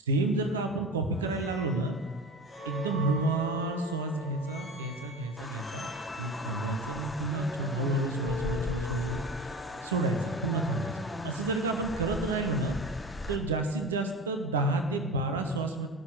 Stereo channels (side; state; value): both; normal; correlation 0.31